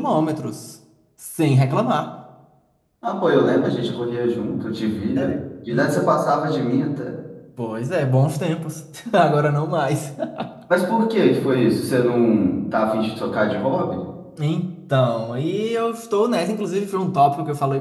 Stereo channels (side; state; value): both; identical; correlation 1.00